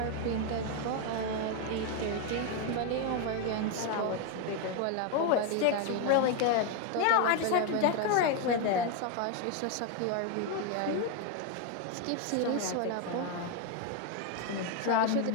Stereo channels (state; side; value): different; both; correlation 0.01